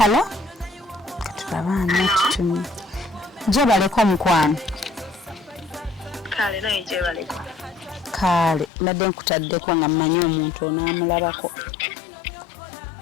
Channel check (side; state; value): right; drops out; at 8.7 s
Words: Katulaba ani atutumye. Gye baleko omukwano. Kale naye gye baleko. Kale nadde nkutaddeko nga mmanyi omuntu onaamulabako.